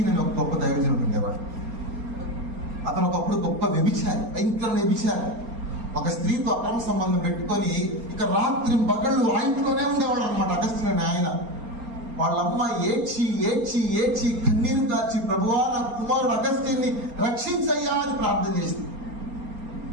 అని ఒక గొప్ప దైవజనుడు ఉండేవాడు. అతను ఒకప్పుడు గొప్ప వ్యభిచారి, భయంకర వ్యభిచారి. ఒక స్త్రీతో అక్రమ సంబంధం పెట్టుకొని ఇక రాత్రి పగళ్ళు ఆ ఇంట్లోనే ఉండేవాడు అనమాట అగస్టీన్ అని ఆయన. వాళ్ళమ్మ ఏడ్చి కన్నీరు కార్చి, ప్రభువా నా కుమారుడు అగస్టీన్ని రక్షించయ్యా అని ప్రార్థన చేసింది.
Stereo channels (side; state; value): left; late; 4.3 ms